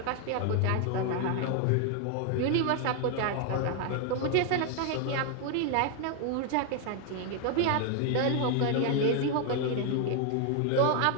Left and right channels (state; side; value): different; both; correlation 0.00